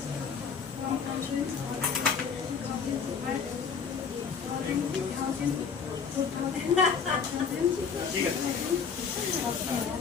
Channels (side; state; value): right; quieter; 6.1 dB